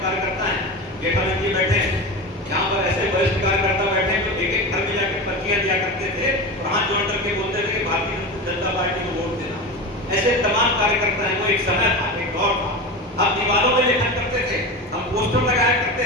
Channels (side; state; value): both; normal; correlation 0.25